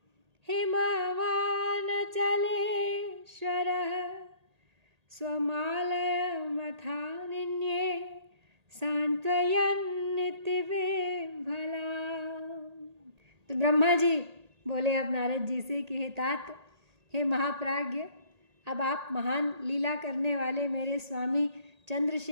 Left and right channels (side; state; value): left; late; 1.8 ms